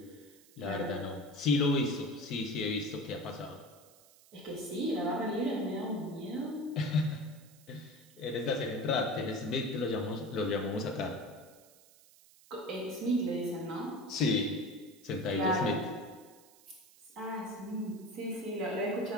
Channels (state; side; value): noise; right; hiss, 25 dB below the sound